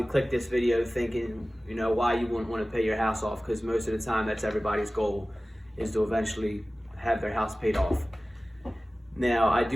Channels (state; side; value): normal; both; correlation 0.97